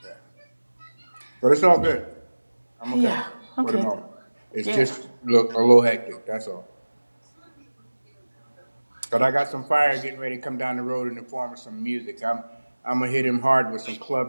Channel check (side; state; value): both; inverted; correlation -1.00